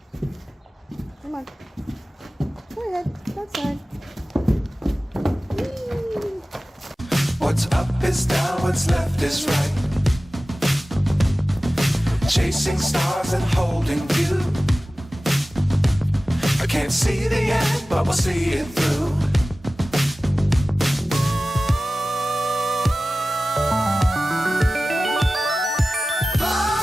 Come on. Go ahead, outside. Whee! What's up is down, what's left is right. Chasing stars and holding you. I can't see the end, but we'll see it through.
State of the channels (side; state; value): both; normal; correlation 0.96